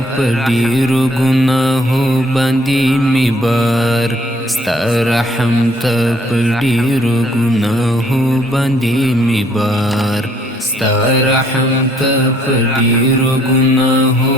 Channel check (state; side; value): normal; both; correlation 0.64